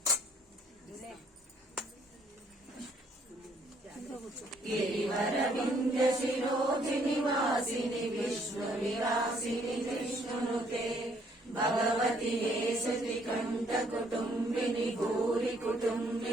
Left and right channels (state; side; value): normal; both; correlation 0.66